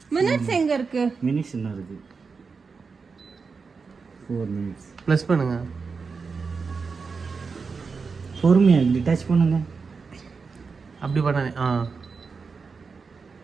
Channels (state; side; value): quieter; left; 5.0 dB